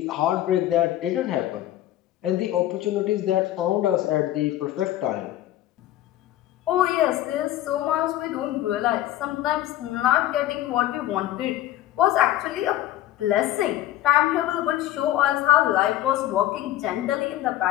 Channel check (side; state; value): right; quieter; 14.0 dB